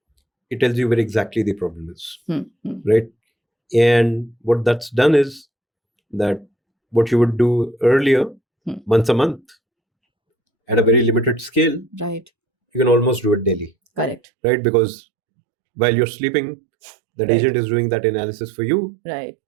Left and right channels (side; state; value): left; drops out; at 14.2 s